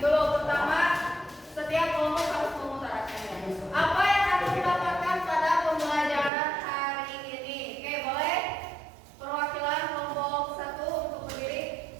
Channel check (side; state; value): left; drops out; at 6.3 s